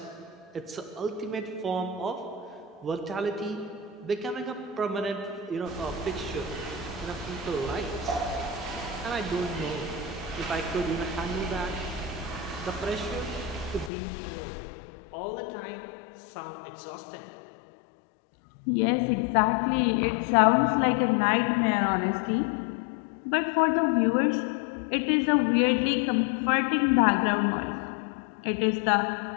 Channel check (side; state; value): right; drops out; at 13.9 s